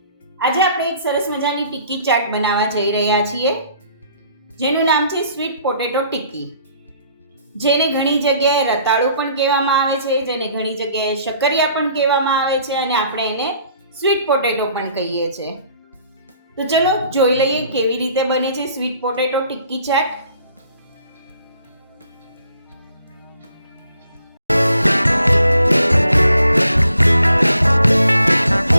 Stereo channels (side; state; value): both; inverted; correlation -0.62